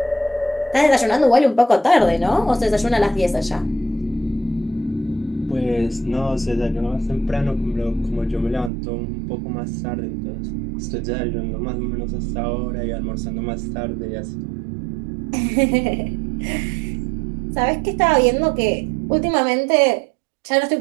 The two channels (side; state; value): left; drops out; at 8.7 s